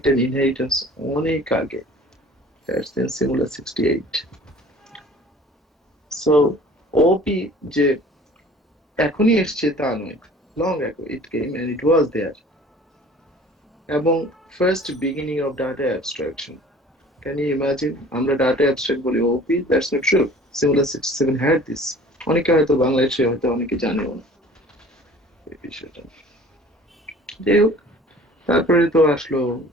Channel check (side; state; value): both; normal; correlation 0.48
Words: and inheritance অনেক আগে, that's in Simula 68. So OP যে এখনই এসছে তা নয়, long ago it came and it was there, এবং first beginning of data abstraction. Can you imagine আমরা data abstract বলি OP? That's not true. Simula 67 had this. অনেকে হয়তো বাংলাদেশে হয়তো অনেকে জানেও না এই বিষয়টা। যাই হোক, তারপরে তো আসলো